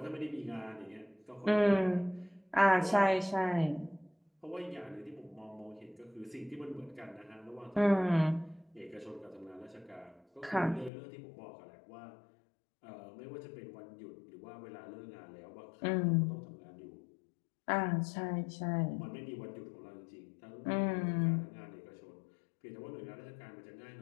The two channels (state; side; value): drops out; right; at 10.9 s